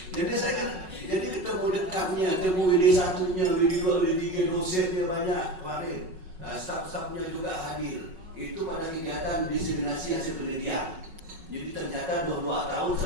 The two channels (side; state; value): left; late; 5.4 ms